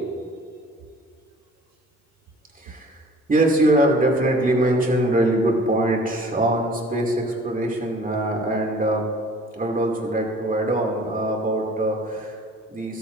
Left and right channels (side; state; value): both; normal; correlation 0.50